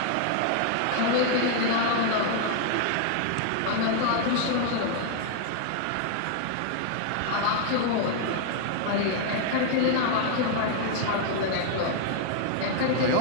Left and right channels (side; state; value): both; different; correlation 0.00